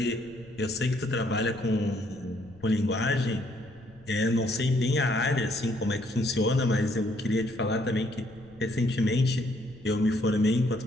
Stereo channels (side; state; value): left; noise; rumble, 24 dB below the sound